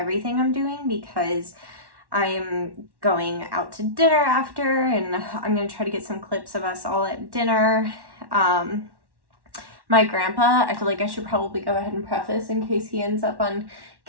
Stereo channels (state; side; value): late; left; 1.1 ms